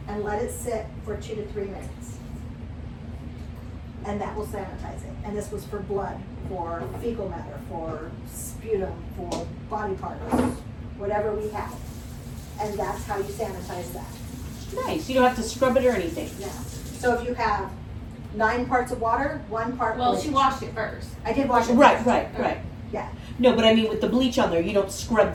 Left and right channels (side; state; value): both; identical; correlation 1.00